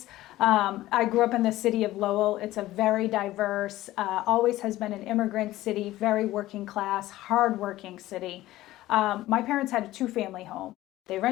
I grew up in the city of Lowell. It's a very diverse, always has been an immigrant city, very working class, hardworking city. My parents had a 2-family home. They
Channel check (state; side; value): quieter; right; 16.1 dB